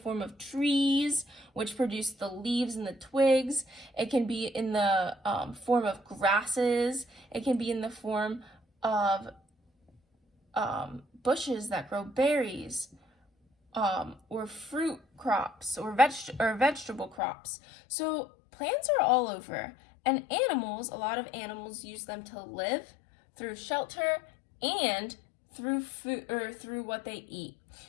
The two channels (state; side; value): drops out; right; at 17.2 s